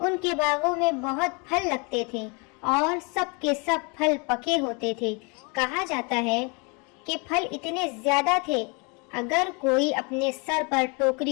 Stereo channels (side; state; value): right; quieter; 31.9 dB